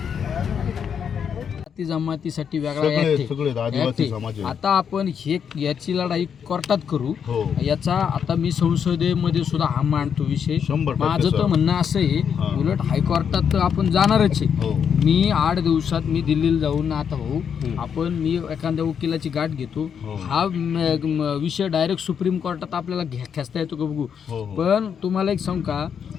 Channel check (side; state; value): right; quieter; 7.5 dB